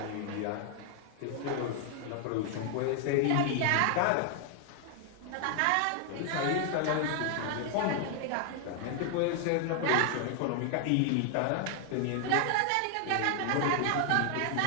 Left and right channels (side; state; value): both; different; correlation 0.00